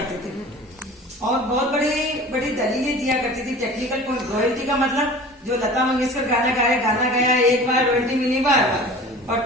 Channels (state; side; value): normal; both; correlation 0.40